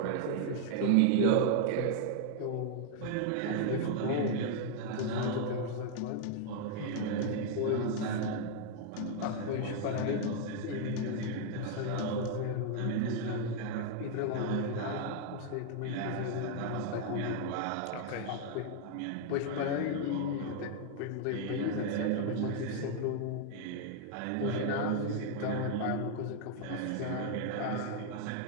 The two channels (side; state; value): both; different; correlation 0.00